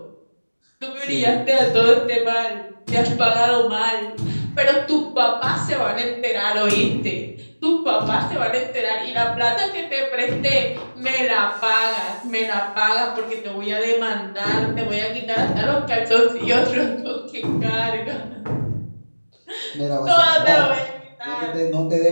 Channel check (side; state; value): both; inverted; correlation -1.00